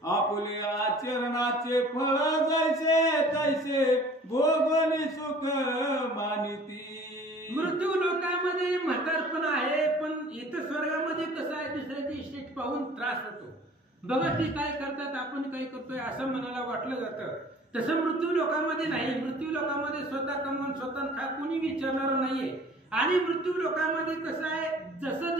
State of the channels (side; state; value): both; normal; correlation 0.49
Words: आपले आचरणाचे फळ जैसे तैसे भोगोनी सुख मानिती. मृत्यू लोकांमध्ये म्हातारपण आहे पण इथं स्वर्गामध्ये कसं आहे दुसऱ्याची इस्टेट पाहून त्रास होतो. बघा ते काय करतात आपण काय करतोय असं मनाला वाटलं जातं. तसं मृत्यू लोकांमध्ये नाही. मृत्यू लोकांमध्ये स्वतः कमवून स्वतः खा कोणी विचारणार नाहीये. आणि मृत्यू लोकांमध्ये कसं आहे जसं